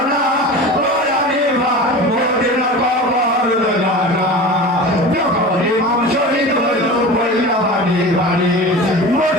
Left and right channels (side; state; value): both; normal; correlation 0.33